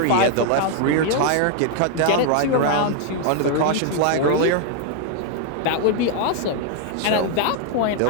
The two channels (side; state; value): both; different; correlation 0.00